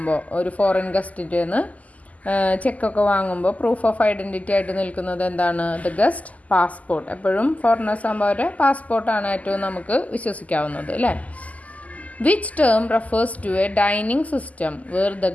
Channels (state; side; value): late; right; 0.074 ms